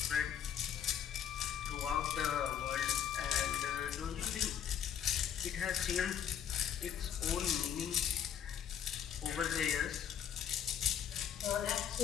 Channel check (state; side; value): quieter; right; 8.9 dB